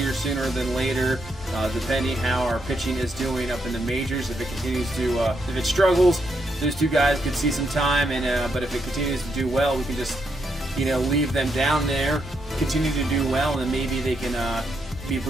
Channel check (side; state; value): both; normal; correlation 0.79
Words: sooner than later, depending how our pitching is doing up in the majors. If it continues to, if it struggles, those two guys could see some time, and but if it continues to do well, we can just, leave them down there, continue to do well, and then maybe they can be